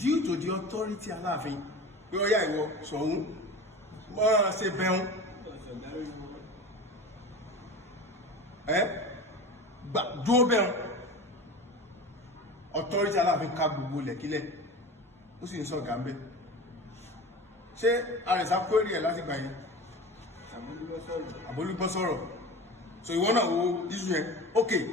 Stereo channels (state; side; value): normal; both; correlation 0.32